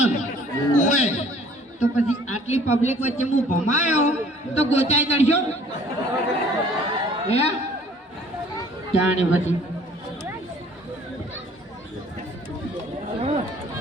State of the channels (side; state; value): both; normal; correlation 0.54